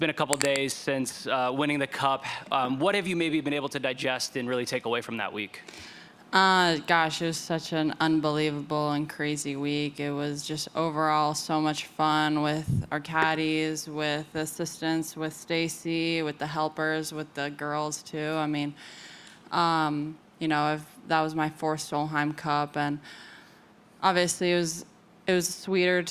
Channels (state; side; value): identical; both; correlation 1.00